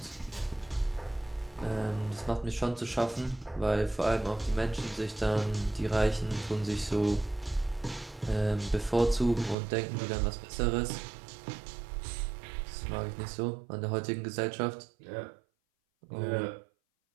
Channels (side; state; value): left; drops out; at 9.6 s